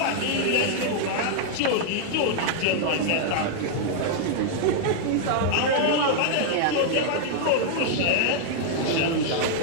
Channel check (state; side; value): different; both; correlation -0.01